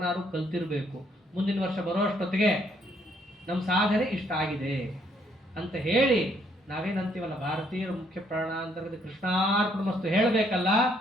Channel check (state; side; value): normal; both; correlation 0.69